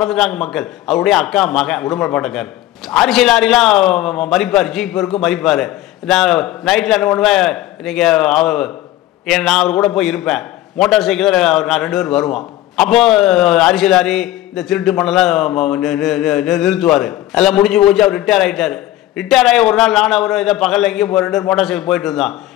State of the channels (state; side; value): quieter; right; 14.7 dB